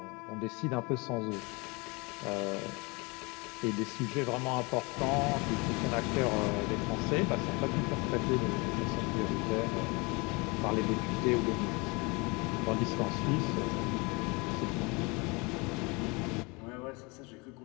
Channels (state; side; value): quieter; right; 27.8 dB